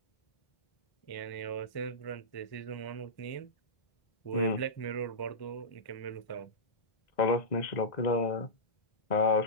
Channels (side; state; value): right; late; 1.1 ms